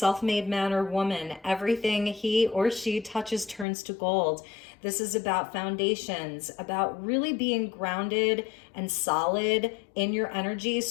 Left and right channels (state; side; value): drops out; right; at 3.7 s